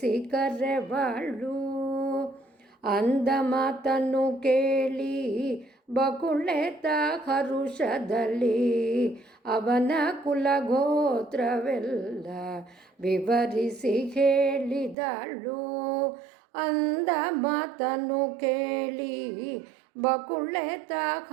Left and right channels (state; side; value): drops out; left; at 15.0 s